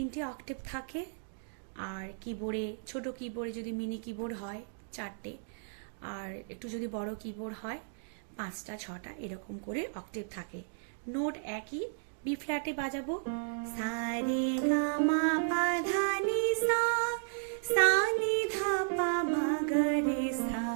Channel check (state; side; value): silent; left; digital silence